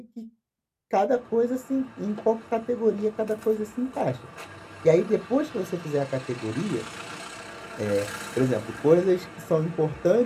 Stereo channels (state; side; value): identical; both; correlation 1.00